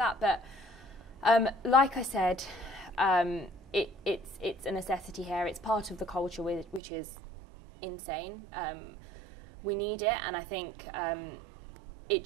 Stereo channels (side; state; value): left; drops out; at 6.8 s